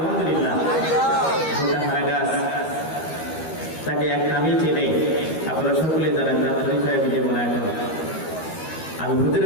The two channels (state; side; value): late; right; 13 ms